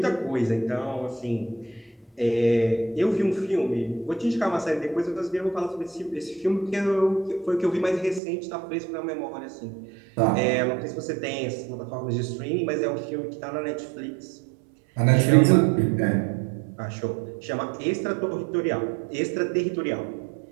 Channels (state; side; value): drops out; left; at 8.2 s